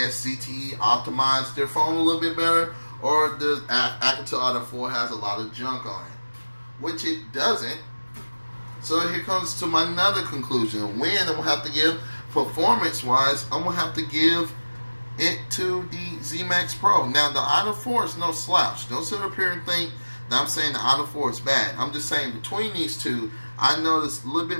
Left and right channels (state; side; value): inverted; both; correlation -1.00